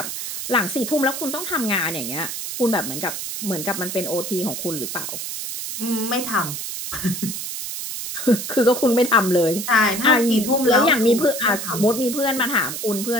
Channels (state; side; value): noise; right; hiss, 6 dB below the sound